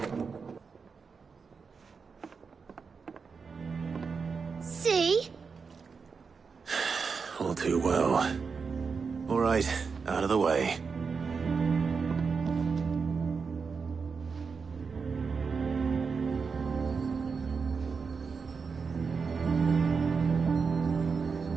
See? All too well. All right, out of the way.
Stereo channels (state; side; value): quieter; left; 5.3 dB